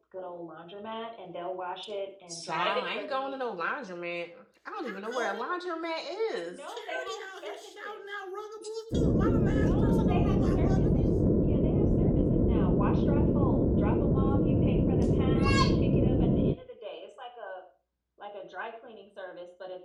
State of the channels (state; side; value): identical; both; correlation 1.00